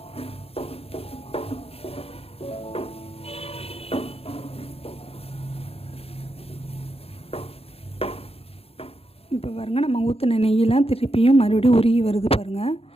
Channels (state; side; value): late; right; 0.28 ms